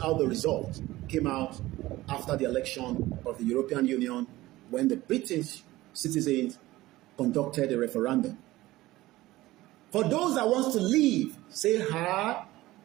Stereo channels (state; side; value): quieter; left; 17.6 dB